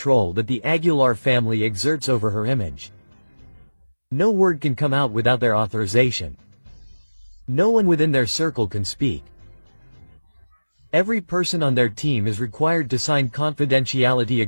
that the Aguilar family exerts over her image. No word can come out without their authorization. No one within their circle can speak. Every person on their team is required to sign confidentiality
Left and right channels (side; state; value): both; inverted; correlation -1.00